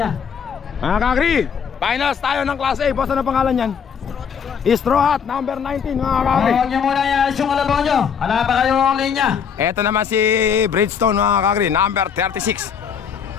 Mga kakri, finals tayo ng Class A. Boss, ano pangalan yan? Straw Hat, number 19 mga kakri. Huwag niyo muna yan yung kalabaw nyo. Wala pa kayo ang linya. Ito naman si Bridgestone mga kakri, number 36.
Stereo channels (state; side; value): quieter; right; 7.2 dB